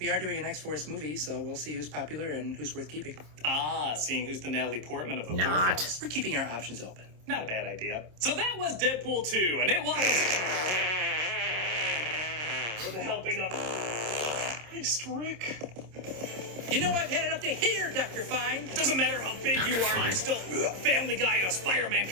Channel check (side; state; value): left; late; 27 ms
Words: are doing an X-Force movie, so we'll see who's popular and who's worth keeping. Ah, seeing who's the Natalie Portman of the Not. Warfels. We're keeping our options open. Not a bad idea. So that was Deadpool 2, and it was... with the helping of... Christ, Rick. You know I've had it up to here, Dr. Fine. It doesn't matter how big you are, you're still Family Guy in a Spider-Man